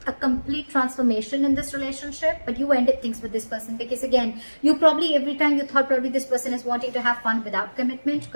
a complete transformation in this relationship, but you ended things with this person because, again, you probably, every time you thought probably this person is wanting to have fun without commitment,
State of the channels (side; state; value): both; inverted; correlation -1.00